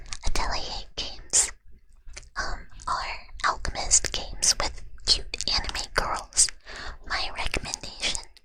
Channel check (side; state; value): both; identical; correlation 1.00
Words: Atelier Games, are alchemist games with cute anime girls. My recommendation